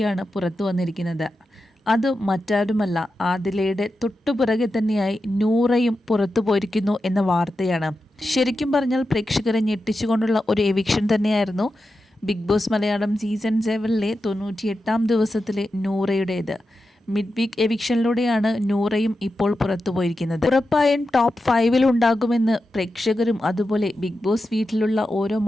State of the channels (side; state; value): both; normal; correlation 0.90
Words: പുറത്തു വന്നിരിക്കുന്നത്. അത് മറ്റാരുമല്ല, ആദിലയുടെ തൊട്ടുപിറകെ തന്നെയായി നൂറയും പുറത്തു പോയിരിക്കുന്നു എന്ന വാർത്തയാണ്. ശരിക്കും പറഞ്ഞാൽ പ്രേക്ഷകരെ ഞെട്ടിച്ചുകൊണ്ടുള്ള ഒരു എവിക്ഷൻ തന്നെയായിരുന്നു ബിഗ് ബോസ് മലയാളം സീസൺ 7ലെ 98ാം ദിവസത്തിലെ നൂറയുടേത്. മിഡ് വീക്ക് എവിക്ഷനിലൂടെയാണ് നൂറയും ഇപ്പോൾ പുറത്തുപോയിരിക്കുന്നത്. ഉറപ്പായും ടോപ്പ് 5-ൽ ഉണ്ടാകുമെന്ന് പ്രേക്ഷകരും അതുപോലെ ബിഗ് ബോസ് വീട്ടിലുള്ള ഓരോ